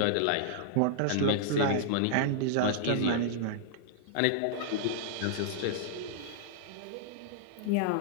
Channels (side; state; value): both; different; correlation -0.01